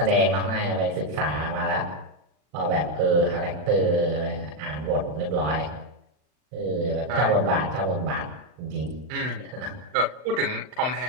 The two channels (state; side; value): late; left; 39 ms